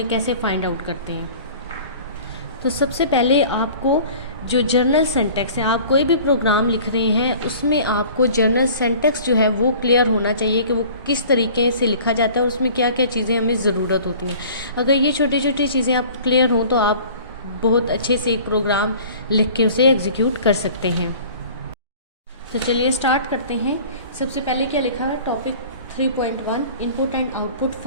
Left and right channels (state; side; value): inverted; both; correlation -0.46